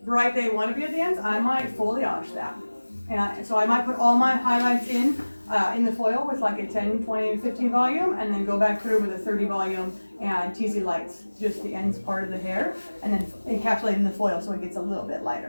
bright they want to be at the ends. I might foliage that. And so I might put all my highlights in the foil with like a 10, 20, 15 volume, and then go back through with a 30 volume and teasy lights, just the ends part of the hair, and then encapsulate in the foil so it gets a little bit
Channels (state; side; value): inverted; both; correlation -1.00